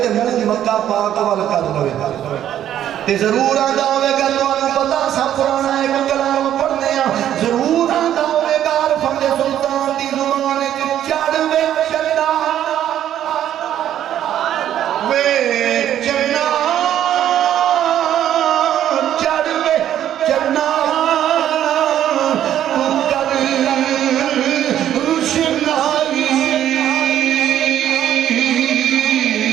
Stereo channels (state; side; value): quieter; left; 11.1 dB